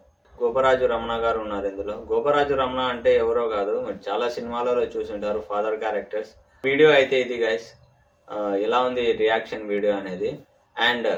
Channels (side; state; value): both; identical; correlation 1.00